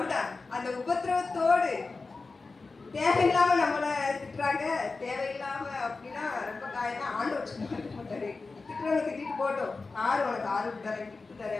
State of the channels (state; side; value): quieter; right; 3.9 dB